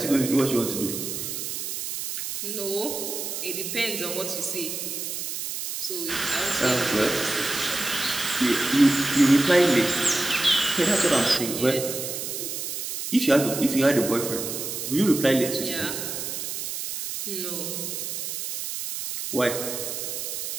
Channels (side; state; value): right; noise; hiss, 5 dB below the sound